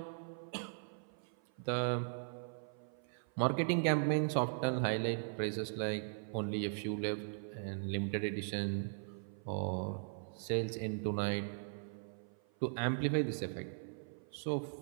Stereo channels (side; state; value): left; silent; 52 dB below the other